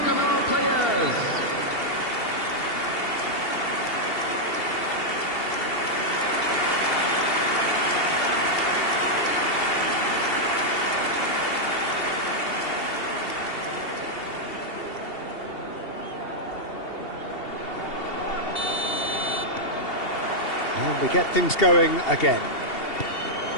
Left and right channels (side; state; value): right; late; 2.7 ms